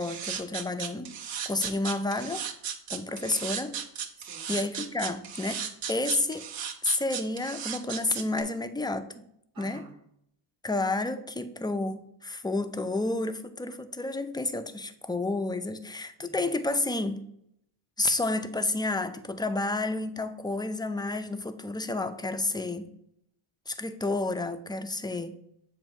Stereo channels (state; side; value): normal; both; correlation 0.48